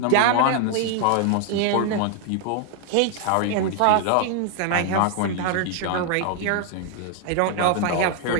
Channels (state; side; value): different; both; correlation 0.00